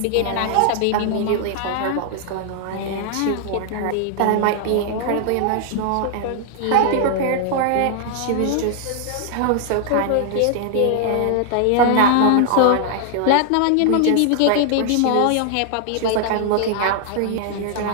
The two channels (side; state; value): both; different; correlation 0.00